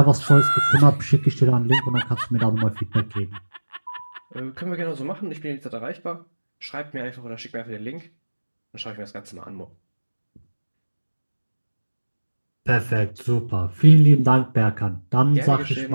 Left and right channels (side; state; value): both; inverted; correlation -1.00